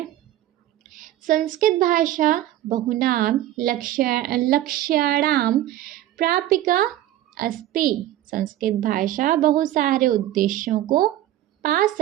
संस्कृत भाषा बहुनाम लक्ष्याणां प्रापिका अस्ति। संस्कृत भाषा बहुत सारे उद्देश्यों को पा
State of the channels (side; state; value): left; quieter; 13.6 dB